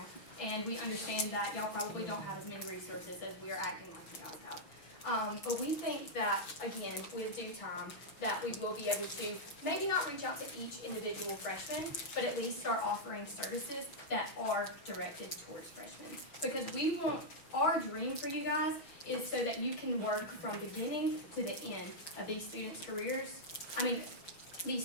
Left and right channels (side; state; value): right; late; 6.1 ms